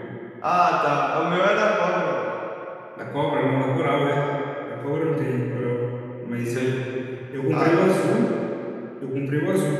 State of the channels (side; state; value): both; identical; correlation 1.00